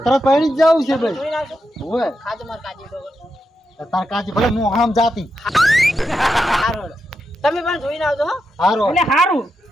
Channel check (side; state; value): both; normal; correlation 0.85